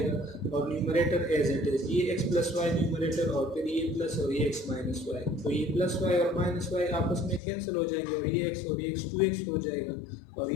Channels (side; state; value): right; drops out; at 7.4 s